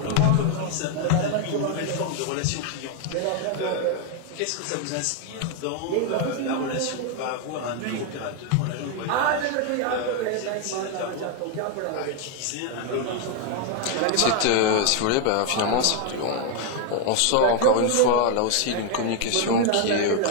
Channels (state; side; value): different; both; correlation 0.00